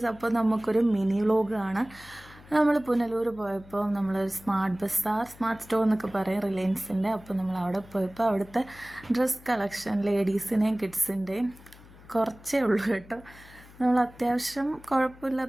അപ്പോൾ നമുക്കൊരു mini വ്ലോഗാണ്. നമ്മൾ പുനലൂർ പോയപ്പോൾ നമ്മളൊരു സ്മാർട്ട് സ്റ്റോർ എന്നൊക്കെ പറയും, റിലയൻസിൻ്റെ. അപ്പോൾ നമ്മൾ അവിടെ പോയപ്പോൾ അവിടുത്തെ ഡ്രസ് കളക്ഷൻ ലേഡീസിൻ്റെയും കിഡ്സിൻ്റെയും കുറച്ചേ ഉള്ളൂ കേട്ടോ. നമ്മൾ അത്യാവശ്യം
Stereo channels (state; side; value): noise; left; hum, 22 dB below the sound